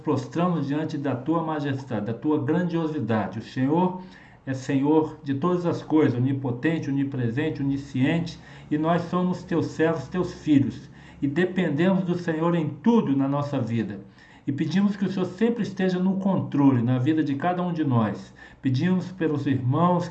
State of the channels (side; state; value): both; identical; correlation 1.00